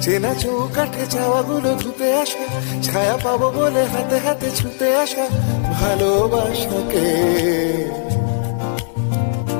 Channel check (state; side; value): silent; right; 67 dB below the other